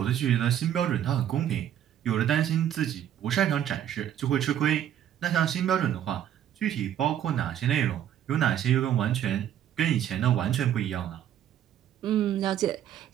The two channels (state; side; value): quieter; left; 10.6 dB